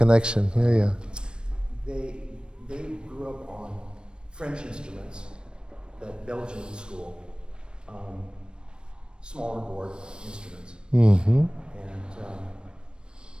Yeah. They grew up on French instruments, that Belgian school, smaller board instruments. Mm-hmm. And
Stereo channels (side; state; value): left; late; 0.054 ms